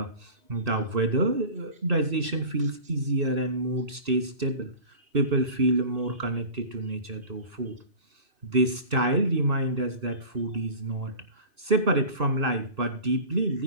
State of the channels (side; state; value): left; late; 2.6 ms